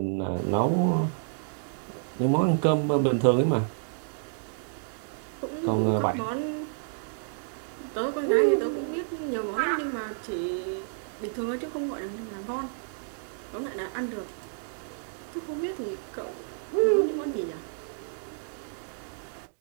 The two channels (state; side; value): silent; left; digital silence